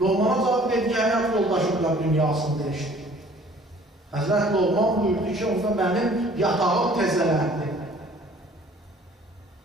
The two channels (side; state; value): both; normal; correlation 0.53